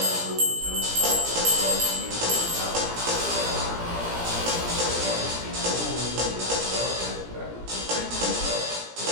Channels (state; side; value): late; left; 17 ms